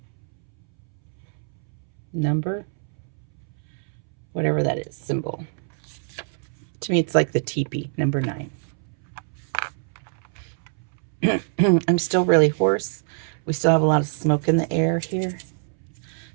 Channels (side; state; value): left; silent; 62 dB below the other